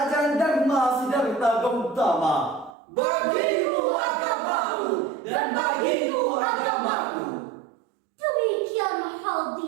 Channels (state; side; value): drops out; left; at 2.8 s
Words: Dharma Siddhartha Gautama. Bagimu agamamu dan bagiku agamaku. Demikian